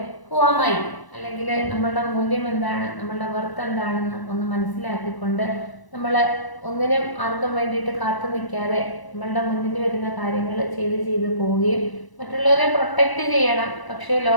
ഹുവാമായി അല്ലെങ്കിൽ നമ്മളുടെ മൂല്യം എന്താണ്, നമ്മളുടെ വർത്ത് എന്താണെന്ന് ഒന്ന് മനസ്സിലാക്കിക്കൊണ്ട് നമ്മൾ ഒന്നിനും ആർക്കും വേണ്ടിയിട്ട് കാത്തു നിൽക്കാതെ നമ്മളുടെ മുന്നിൽ വരുന്ന കാര്യങ്ങൾ ചെയ്ത് പോവുകയും മറ്റുള്ളവരെ പ്രൊട്ടക്റ്റ് ചെയ്യണം. പക്ഷേ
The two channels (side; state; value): right; late; 1.0 ms